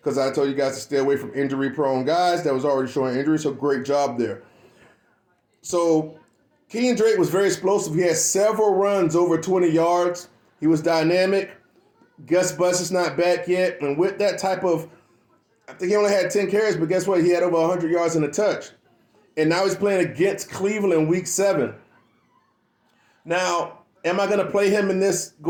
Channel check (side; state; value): both; identical; correlation 1.00